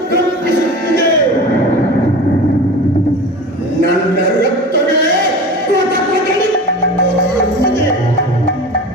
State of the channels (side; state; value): both; normal; correlation 0.34